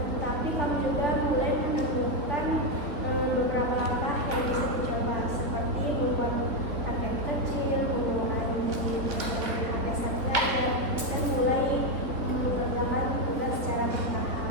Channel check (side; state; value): left; late; 3.8 ms